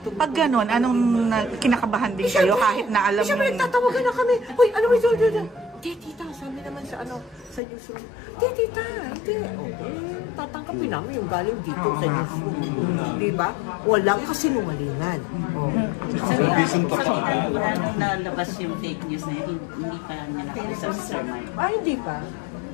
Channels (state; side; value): drops out; right; at 7.6 s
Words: tubo. Pag ganun, anong kinakabahan din kayo kahit na alam mo? Siyempre, nagtatawagan na kami. Uy, ano ba ito? Tita, sabi naman sa sa newsroom. Tita, hindi. Tatangkapin namin yung galing dito sa newsroom. Diba? Walang kasinungalingan. Nung nalabas yung fake news na yun, hindi pa namin nakausap si Sir Mike. Hindi pa.